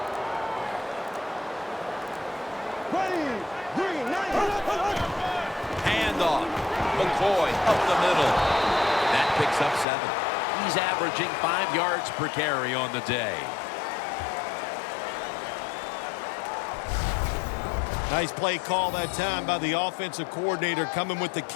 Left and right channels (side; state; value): right; drops out; at 9.9 s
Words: Handoff. McCoy up the middle. That picks up 7. He's averaging 5 yards per carry on the day. Nice play call that time by the offensive coordinator, coming with the